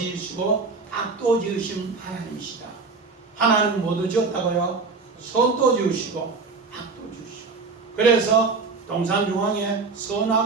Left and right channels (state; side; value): quieter; left; 4.3 dB